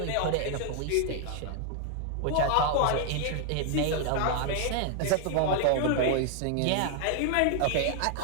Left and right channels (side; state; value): both; different; correlation 0.00